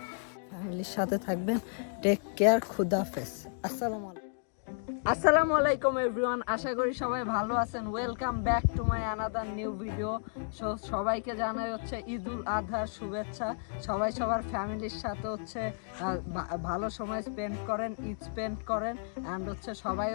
ফ্যামিলির সাথে থাকবেন। টেক কেয়ার, খুদাফেজ, আসসালামু আলাইকুম এভরিওয়ান। আশা করি সবাই ভালো আছেন। Welcome back to my another new video. সবাইকে জানাই হচ্ছে ঈদুল আজহার শুভেচ্ছা। সবাই সবার ফ্যামিলির সাথে হচ্ছে ভালো সময় স্পেন্ড করেন, ঈদ স্পেন্ড করেন, অ্যান্ড হচ্ছে সবাই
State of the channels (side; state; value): right; silent; digital silence